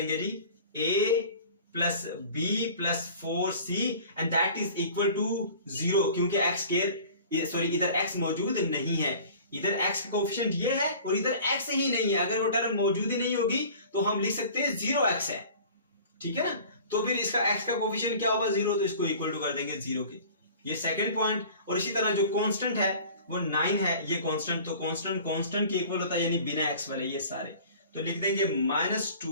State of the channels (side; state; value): both; inverted; correlation -0.45